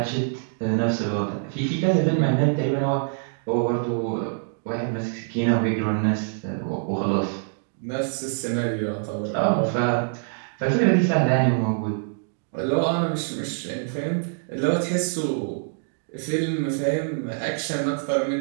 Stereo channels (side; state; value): left; silent; digital silence